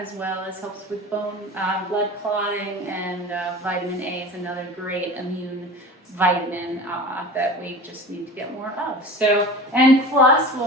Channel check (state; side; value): normal; both; correlation 0.35